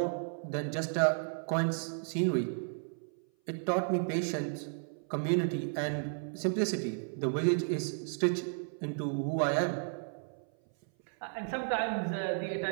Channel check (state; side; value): silent; left; 55 dB below the other